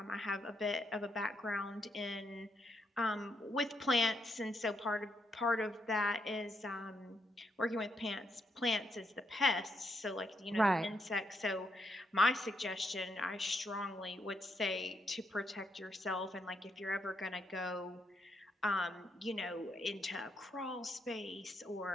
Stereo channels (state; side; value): normal; both; correlation 0.78